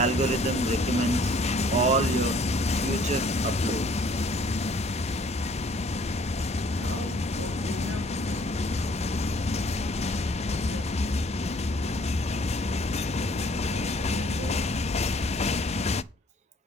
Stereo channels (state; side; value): normal; both; correlation 0.58